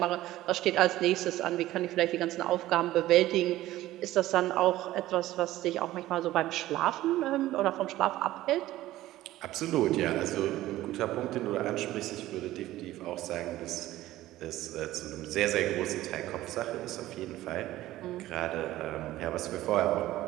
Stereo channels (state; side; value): quieter; left; 15.5 dB